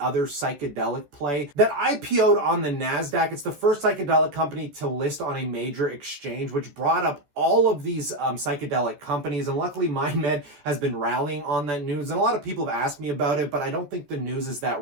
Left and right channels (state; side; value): late; left; 14 ms